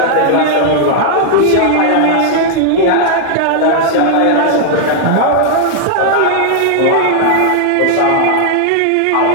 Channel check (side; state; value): both; different; correlation 0.00